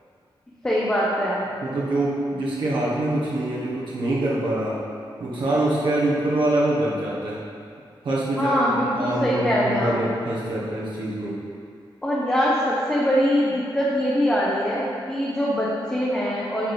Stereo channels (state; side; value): normal; both; correlation 0.79